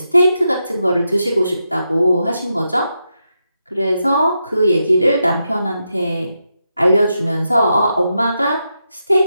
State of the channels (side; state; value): both; inverted; correlation -0.86